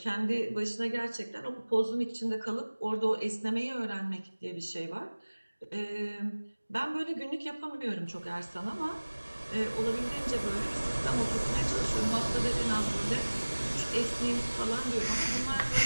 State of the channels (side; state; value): both; inverted; correlation -1.00